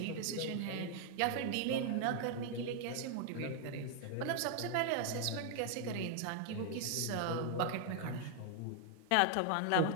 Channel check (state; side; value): different; both; correlation 0.00